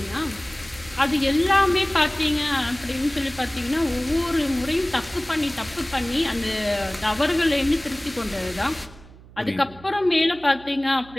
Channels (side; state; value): right; noise; hum, 21 dB below the sound